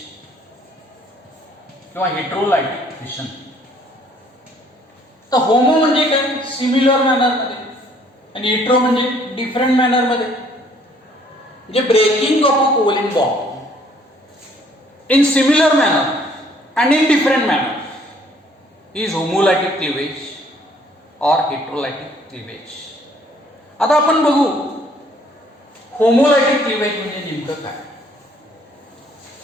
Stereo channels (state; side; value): normal; both; correlation 0.61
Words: किंवा हेटेरोलायटिक फिशन. तर होमो म्हणजे काय, सिमिलर मॅनर मध्ये, आणि हेटेरो म्हणजे डिफरंट मॅनर मध्ये. म्हणजे breaking of a covalent bond in similar manner and in different manner is homolytic cleavage or heterolytic cleavage. आता आपण बघू होमोलायटिक क्लिवेज म्हणजे नेमकं काय.